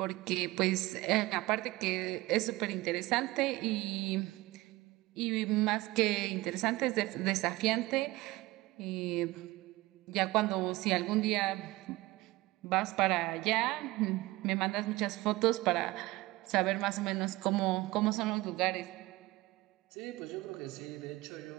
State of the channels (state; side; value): quieter; left; 19.9 dB